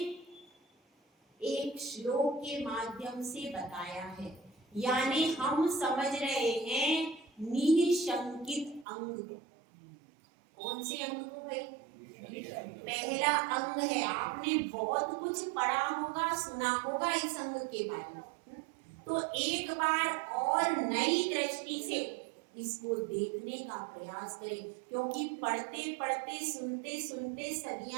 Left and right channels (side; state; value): left; drops out; at 8.8 s